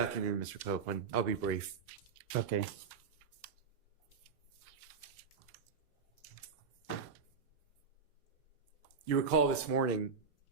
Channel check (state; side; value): quieter; left; 5.6 dB